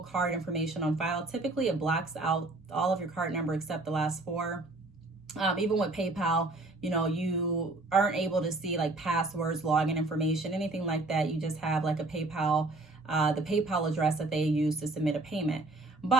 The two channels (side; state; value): left; quieter; 3.0 dB